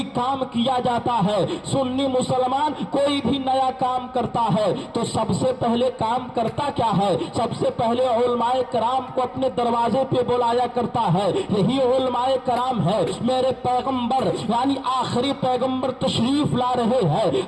کام کیا جاتا ہے، سنی مسلمان کوئی بھی نیا کام کرتا ہے تو سب سے پہلے کام کرتا کیا ہے؟ سب سے پہلے علماء کرام کو اپنے دروازے پہ بلایا کرتا ہے۔ یہی علماء کرام ہے، میرے پیغمبر یعنی آخری پیغمبر تشریف لا رہے ہیں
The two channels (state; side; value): identical; both; correlation 1.00